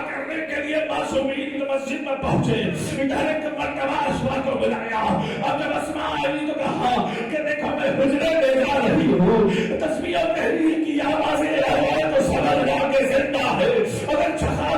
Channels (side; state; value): both; identical; correlation 1.00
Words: کرنے کے لیے معصومین مسجد میں پہنچے ادھر ایک مرتبہ اسما کو بلایا. اب جب اسما آئی تو کہا کہ دیکھو میں حجرے میں جا رہی ہوں, تسبیح و تحلیل کی آوازیں آئے تو سمجھ جا کے زندہ ہے, اگر